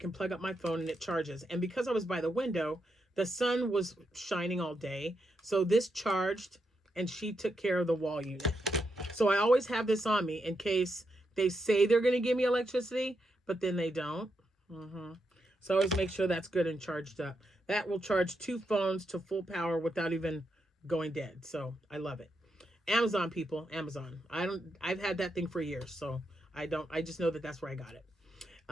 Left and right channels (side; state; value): both; normal; correlation 0.83